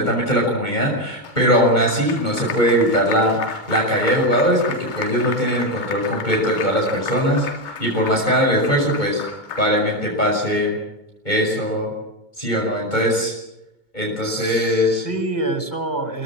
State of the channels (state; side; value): late; right; 2.2 ms